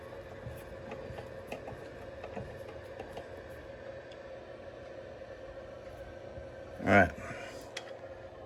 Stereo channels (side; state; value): both; identical; correlation 1.00